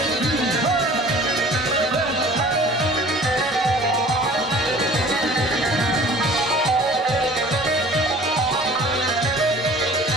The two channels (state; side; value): normal; both; correlation 0.46